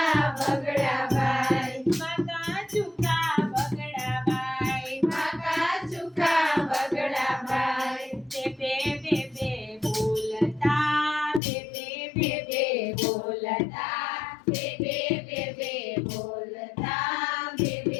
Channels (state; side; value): drops out; right; at 11.4 s